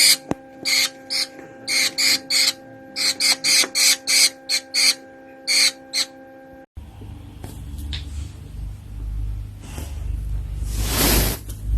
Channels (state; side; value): identical; both; correlation 1.00